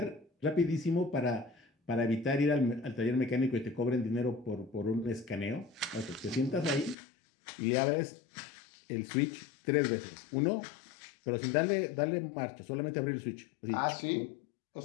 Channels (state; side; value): drops out; right; at 7.0 s